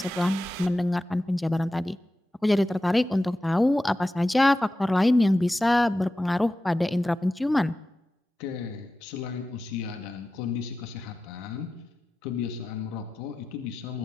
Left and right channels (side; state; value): both; normal; correlation 0.93